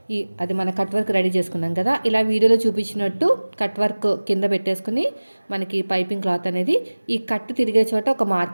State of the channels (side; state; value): both; inverted; correlation -1.00